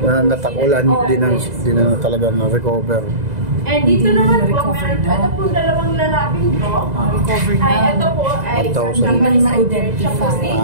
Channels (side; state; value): left; late; 2.0 ms